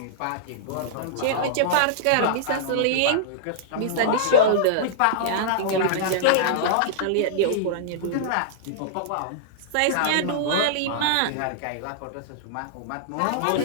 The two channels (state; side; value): different; both; correlation -0.02